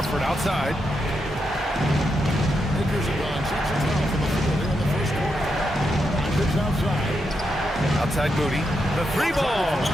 outside. Outside Moody. The 3-ball.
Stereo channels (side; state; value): both; normal; correlation 0.84